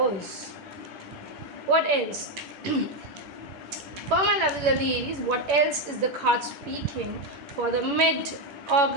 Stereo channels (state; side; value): late; left; 11 ms